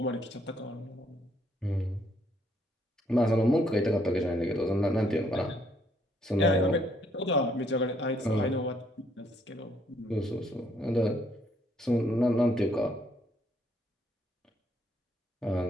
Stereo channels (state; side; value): normal; both; correlation 0.69